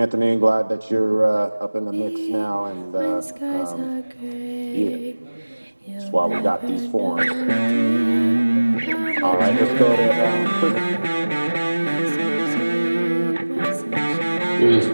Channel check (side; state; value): both; inverted; correlation -1.00